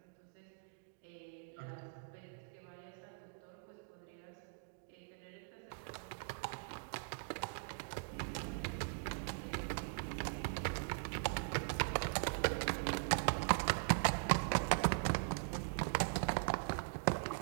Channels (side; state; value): left; silent; digital silence